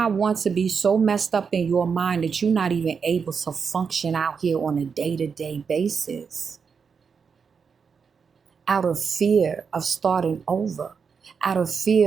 want to be so messed up in your mind that you're not even able to function out here on a day-to-day basis. Out of fear of starting over. Out of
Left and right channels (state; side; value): quieter; left; 6.0 dB